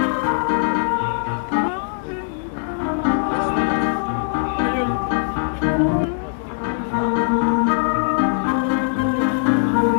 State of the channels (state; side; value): silent; right; 64 dB below the other